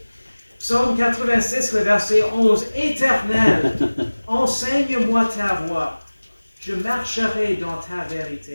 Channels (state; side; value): inverted; both; correlation -1.00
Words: Psaume 86, le verset 11. Éternel, enseigne-moi ta voie. Je marcherai dans ta